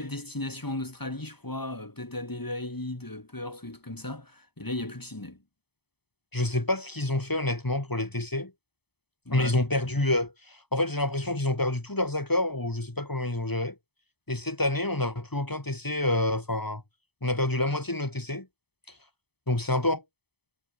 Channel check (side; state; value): right; late; 0.98 ms